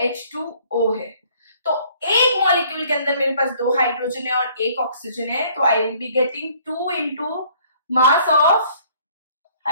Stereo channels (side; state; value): both; inverted; correlation -0.59